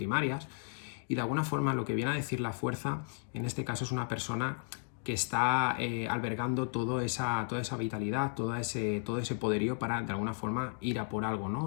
y de alguna forma lo que viene a decir la fuerza, en este caso es una persona que está albergando toda esa vitalidad, todo ese poderío para de alguna forma ir a por algo,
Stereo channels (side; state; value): right; silent; 55 dB below the other